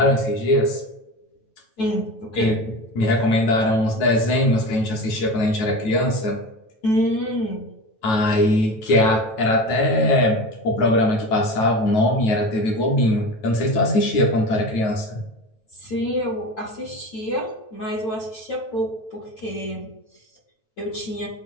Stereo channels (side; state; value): right; late; 9.2 ms